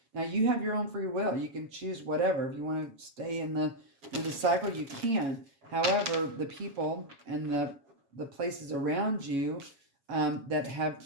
Now, you have your own free will. You can choose whatever. If you want to stay in the cycle, you can. However, the people and the places around you that have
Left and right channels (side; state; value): left; late; 7.2 ms